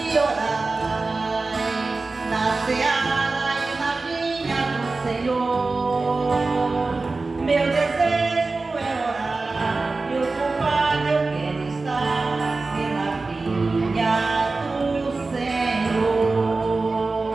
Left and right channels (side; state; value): left; quieter; 3.6 dB